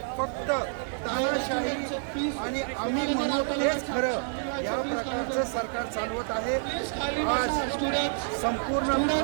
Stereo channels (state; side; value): silent; left; 59 dB below the other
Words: फक्त तानाशाही आणि आम्ही म्हणू तेच खरं या प्रकारचं सरकार चालवत आहे. आज संपूर्ण